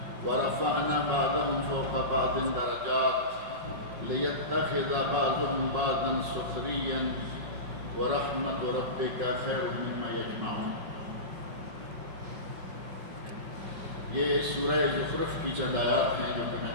ورفعنا بعضهم فوق بعض درجات ليتخذ بعضهم بعضا سخريا ورحمة ربك خير مما يجمعون. یہ سورہ زخرف کی چند آیات ہیں جو کہ میں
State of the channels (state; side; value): late; left; 5.5 ms